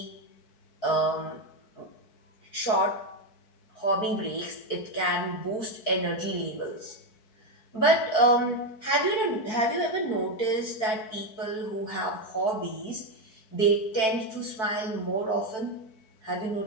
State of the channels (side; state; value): right; late; 4.6 ms